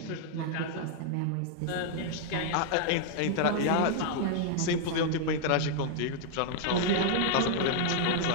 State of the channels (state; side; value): different; both; correlation -0.01